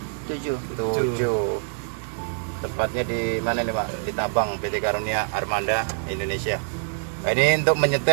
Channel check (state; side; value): silent; left; 62 dB below the other